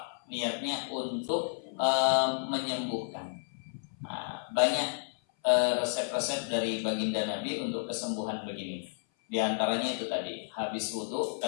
niatnya untuk menyembuhkan. Banyak resep-resep dari baginda Nabi untuk kesembuhan begini. Di antaranya itu tadi, habis wudu,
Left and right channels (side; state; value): right; silent; 56 dB below the other